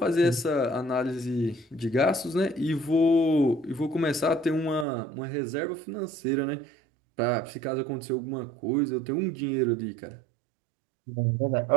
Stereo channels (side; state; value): left; drops out; at 4.9 s